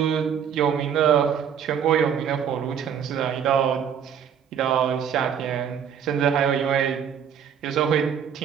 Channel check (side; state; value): left; quieter; 8.1 dB